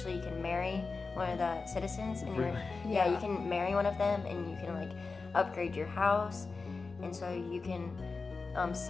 you can marry one of the citizens, and you can marry one of them, and you can like upgrade your house, and so you can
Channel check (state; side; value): quieter; right; 4.2 dB